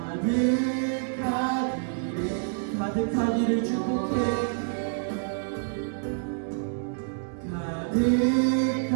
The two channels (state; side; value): silent; left; digital silence